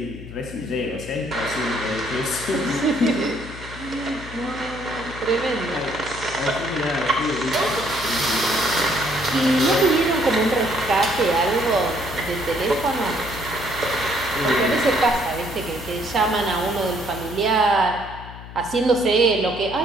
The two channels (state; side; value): noise; left; hum, 14 dB below the sound